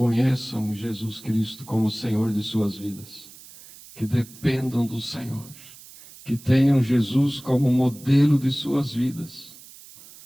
Jesus Cristo como Senhor de suas vidas, que dependam do Senhor, que tenham Jesus como modelo de suas vidas,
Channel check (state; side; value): noise; right; hiss, 20 dB below the sound